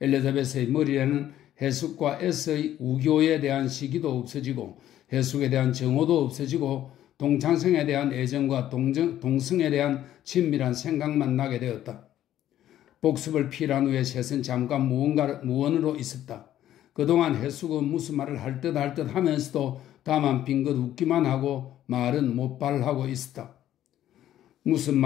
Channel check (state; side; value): quieter; right; 12.2 dB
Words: 머리에는 해숙과 S의 우교에 대한 시기도 없어지고 해숙에 대한 정오도 없어지고 동창생에 대한 애정과 동성에 대한 친밀한 생각만 나게 되었다. 복습을 필요한 후에 셋은 잠깐 무언으로 있었다. 그동안 해숙은 무슨 말을 할 듯 하면서도 다만 빙긋 웃기만 하고 말은 못발하고 있었다. 무슨